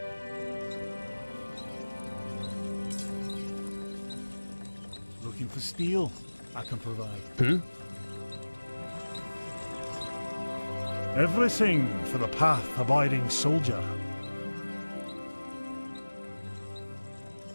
Looking for steel? I can provide. Everything for the path-abiding soldier.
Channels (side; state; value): both; inverted; correlation -1.00